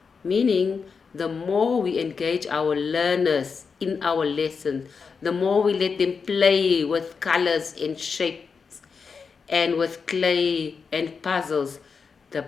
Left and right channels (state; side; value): quieter; right; 5.4 dB